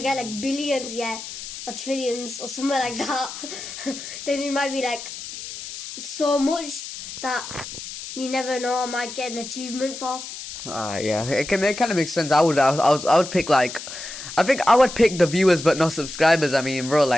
get like billions, yeah, or trillions or something like that, then it might be like so much that you never know, I might get an achievement for. Yeah, it kind of makes sense. I would pick I think I would pick the viewers but no subscribers. I mean, bro,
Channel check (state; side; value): noise; left; hiss, 10 dB below the sound